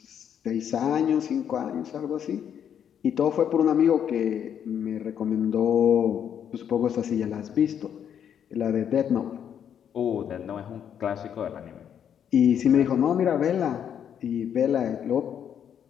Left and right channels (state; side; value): quieter; right; 8.8 dB